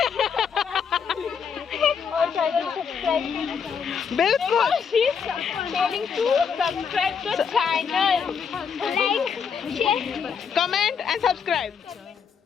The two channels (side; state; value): right; quieter; 6.6 dB